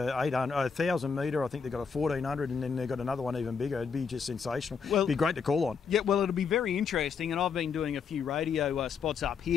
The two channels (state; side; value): quieter; right; 6.0 dB